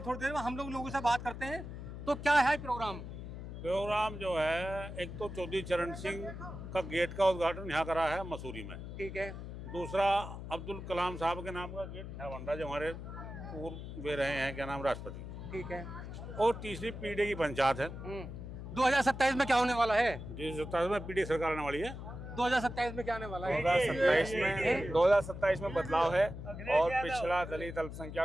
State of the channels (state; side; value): noise; left; hum, 9 dB below the sound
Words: थोड़ी देर में। हम लोगों से बात करते हैं। तो क्या है प्रोग्राम जो है, एक तो चौधरी चरण सिंह का गेट का उद्घाटन यहाँ करा है मसूरी में। ठीक है। दूसरा अब्दुल कलाम साहब के नाम का गेट है वंडा, जो हमारे पूर्व वे रहे हैं, क्या नाम, राष्ट्रपति। ठीक है। और तीसरी पीडीए की पंचायत है। 2027 में क्या होने वाला है? 2027 में पीडीए सरकार आने वाली है। 2027 में क्या आने वाला है? 2027 में बदलाव है और पिछड़ा, दलित,